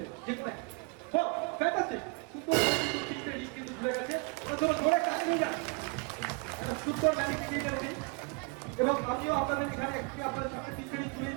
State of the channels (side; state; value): left; quieter; 32.2 dB